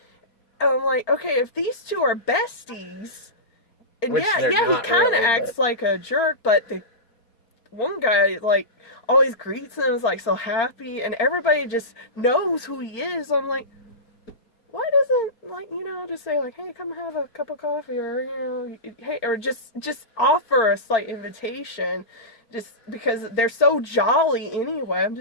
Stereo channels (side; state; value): right; late; 4.4 ms